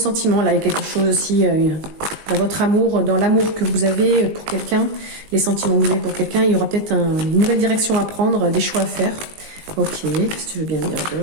Là, il y a quelque chose aussi dans votre amour, dans l'amour que vous avez pour quelqu'un, les sentiments que vous avez pour quelqu'un. Il y aura peut-être une nouvelle direction à prendre, des choix à faire. Ok, qu'est-ce que tu veux bien dire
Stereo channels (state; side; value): late; left; 19 ms